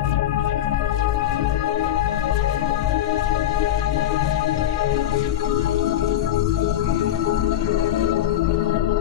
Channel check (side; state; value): right; quieter; 12.4 dB